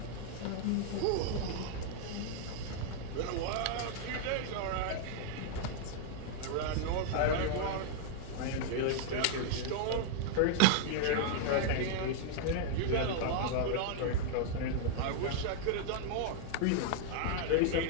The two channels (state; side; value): different; both; correlation -0.01